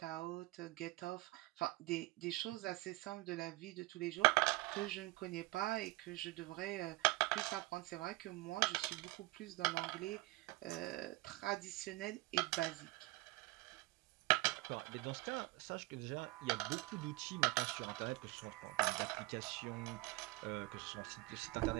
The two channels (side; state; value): left; quieter; 20.7 dB